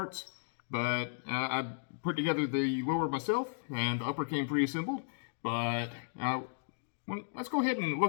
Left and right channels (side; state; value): right; silent; digital silence